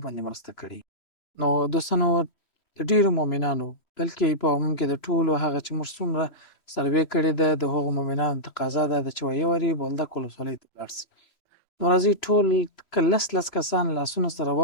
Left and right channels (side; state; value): right; late; 3.0 ms